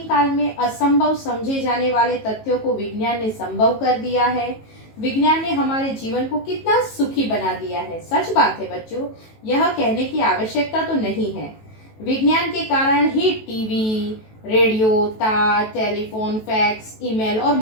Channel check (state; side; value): late; right; 18 ms